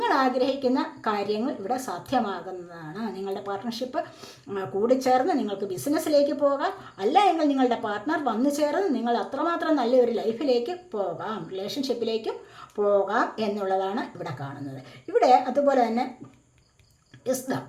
ആഗ്രഹിക്കുന്ന കാര്യങ്ങൾ ഇവിടെ സാധ്യമാകുന്നതാണ്. നിങ്ങളുടെ പാർട്ട്ണർഷിപ്പ് കൂടിച്ചേർന്ന് നിങ്ങൾക്ക് ബിസിനസ്സിലേക്ക് പോകാം, അല്ല എങ്കിൽ നിങ്ങളുടെ പാർട്ട്ണർ വന്നു ചേർന്ന് നിങ്ങൾ അത്രമാത്രം നല്ലൊരു ലൈഫിലേക്ക് പോകാം, റിലേഷൻഷിപ്പിലേക്കും പോകാം എന്നുള്ളതാണ് ഇവിടെ കാണുന്നത്. ഇവിടെ അതുപോലെ തന്നെ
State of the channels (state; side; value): identical; both; correlation 1.00